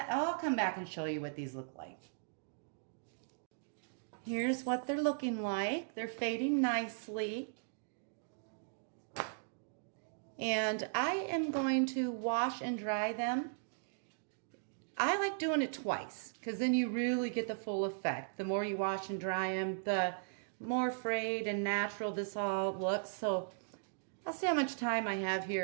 I'll come back and show you what these look like. Here's what they're looking like. They're fading nicely. And I am going to wash and dry them. I like doing it twice, because then you really get the full effect. The more you wash and dry them, the more frayed and natural this all looks. So I'll see how much time I have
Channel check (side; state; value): left; silent; digital silence